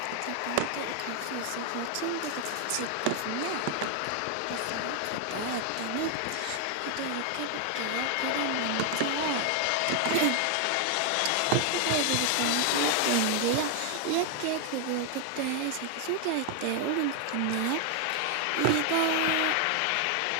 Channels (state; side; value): different; both; correlation 0.00